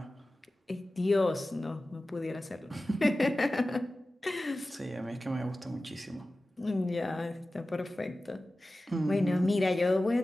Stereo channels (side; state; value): both; normal; correlation 0.96